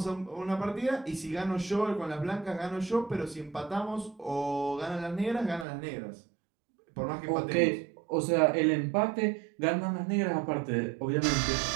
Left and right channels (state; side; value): drops out; left; at 5.7 s